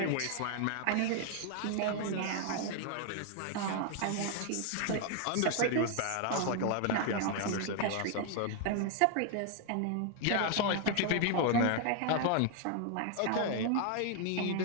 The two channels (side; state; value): both; different; correlation 0.00